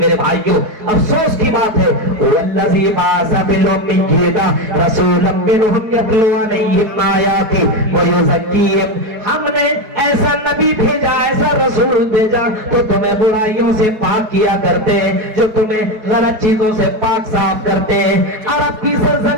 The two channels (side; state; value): left; late; 4.7 ms